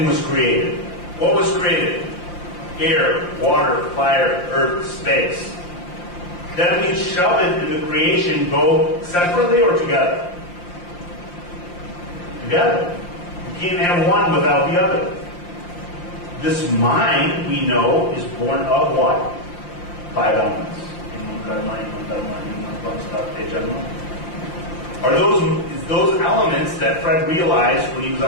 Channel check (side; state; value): right; late; 5.7 ms